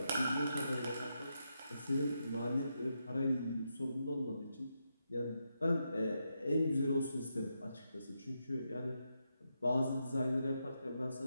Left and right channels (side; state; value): both; inverted; correlation -0.84